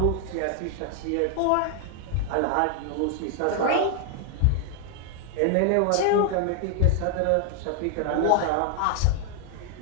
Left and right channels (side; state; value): both; different; correlation 0.00